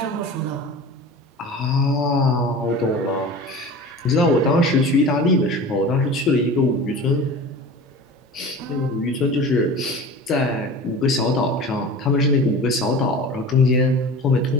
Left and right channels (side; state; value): both; normal; correlation 0.36